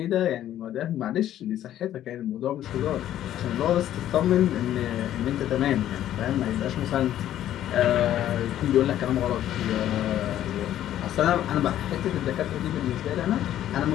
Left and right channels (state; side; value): quieter; right; 12.0 dB